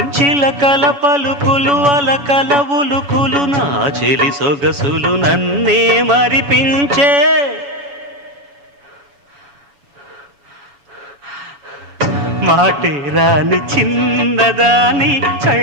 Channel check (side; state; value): left; late; 7.1 ms